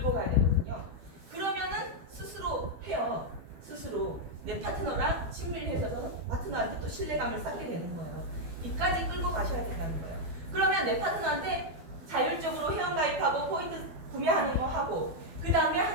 가야 되거든요. 그러면은 스스로 해요. 스스로 내 파트너랑 친밀해져서 파트너한테 또 신뢰감을 쌓게 되는 거예요. 이까지 끌고 가셔야 된다는 거예요. 그러면 내 파트너한테 자율적으로 회원가입하고 포인트 구매하는 거 하고, 그 다음에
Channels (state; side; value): late; left; 12 ms